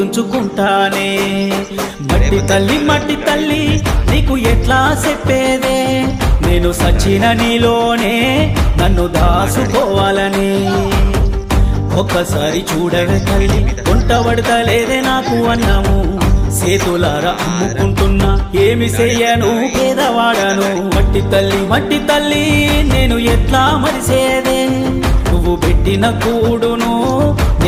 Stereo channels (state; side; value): identical; both; correlation 1.00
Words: మట్టి తల్లి నీకు ఎట్లా చెప్పేదే, నేను సచిన నీలోనే నన్ను దాసుకోవాలని. ఒక్కసారి చూడవే తల్లి, వంటబడతలేదే నాకు అన్నము, చేతులారా అమ్ముకుంటున్నా ఏమి చెయ్యను పేదవాడను. మట్టి తల్లి నేను ఎట్లా మరిసేదే, నువ్వు పెట్టిన కూడును